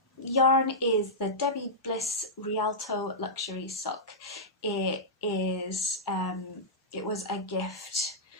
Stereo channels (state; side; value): normal; both; correlation -0.12